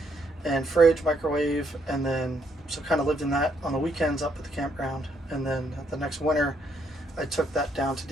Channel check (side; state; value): both; normal; correlation 0.73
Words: and fridge, microwave, and then so kind of lived in that on the weekends up at the campground. And then the next winter I took that down to